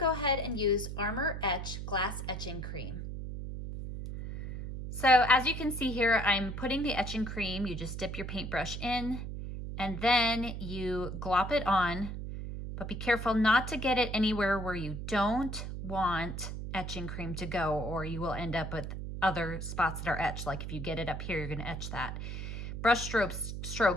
ahead and use Armor Etch Glass Etching Cream. So as you can see here, I'm putting the etching cream. You just dip your paintbrush in and then you glop it on, but be careful not to get it anywhere where you don't want etching cream to go, or you will end up with other spots that are etched. Like if you get it up here, you're gonna etch that. Brush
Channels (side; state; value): right; noise; hum, 6 dB below the sound